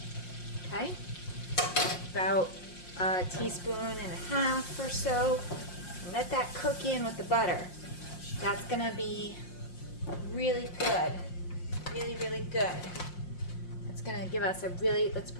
Okay, about a teaspoon and a half or so. And let that cook in with the butter. That's gonna be really good, really, really good. It's gonna give us a really, let's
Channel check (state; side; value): late; right; 5.6 ms